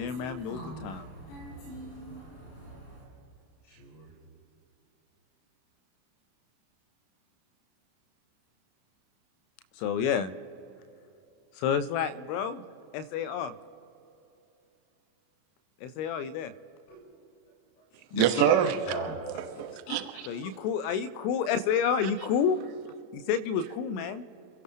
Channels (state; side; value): late; right; 32 ms